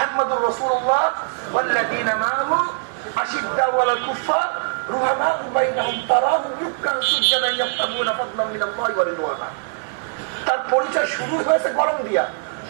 রাসূলুল্লাহ ওয়াল্লাযীনা মাআহু আশিদ্দাউ আলাল কুফার রুহামাউ বাইনাহুম তারাহুম রুকআন সুজদান ইয়াবতাগুনা ফাদলান মিনাল্লাহি ওয়া রিদওয়ানা। তার পরিচয় শুরু হয়েছে গরম দিয়া,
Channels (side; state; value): left; silent; digital silence